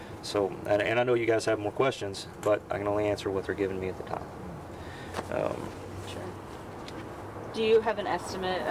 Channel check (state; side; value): identical; both; correlation 1.00